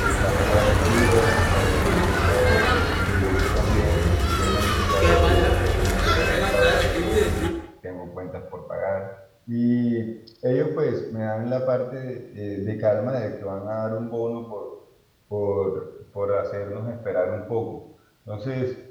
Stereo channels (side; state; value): both; identical; correlation 1.00